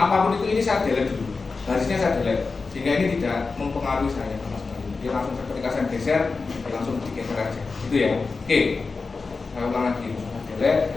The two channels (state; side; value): quieter; right; 4.3 dB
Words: itu, ini saya delete dulu, garisnya saya delete, sehingga ini tidak mempengaruhi saya sama sekali. Dia langsung ketika saya geser, dia langsung digeser aja. Gitu ya. Oke. Saya ulang lagi. Saya delete